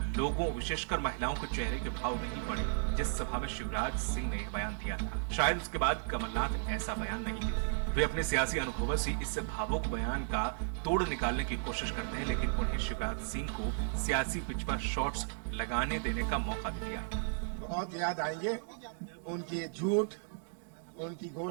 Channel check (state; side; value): silent; left; 55 dB below the other